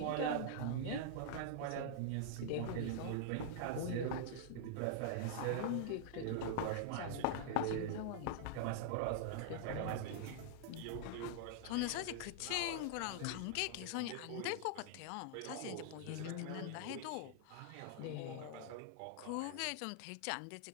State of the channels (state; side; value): different; both; correlation -0.01